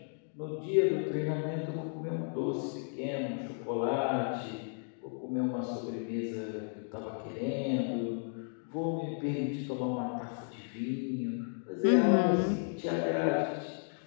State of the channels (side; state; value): right; silent; 55 dB below the other